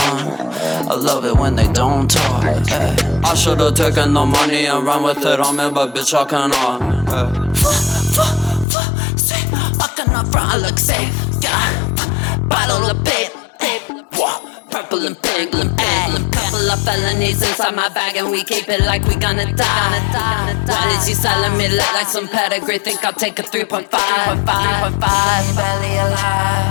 I love it when they don't talk. I should've taken the money and run with it on me, but bitch I cannot. Fucking up front, I look safe, yeah. Bottle of babe, purple and pink, couple of felonies inside my bag, and we keep it like we gonna die. Why is he selling me lit like some pedigree? Think I'll take a 3.5. Barely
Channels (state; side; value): drops out; right; at 8.7 s